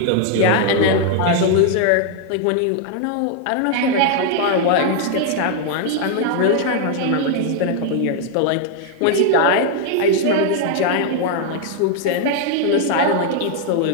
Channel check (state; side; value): different; both; correlation 0.00